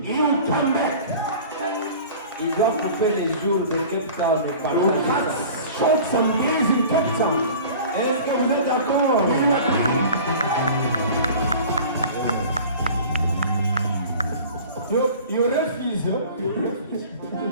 He'll come back. Il doit couper les jours de Cape Town et We'll partir. cut short some days in Cape Town. Est-ce que vous êtes d'accord? You refuse.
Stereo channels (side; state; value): both; inverted; correlation -0.42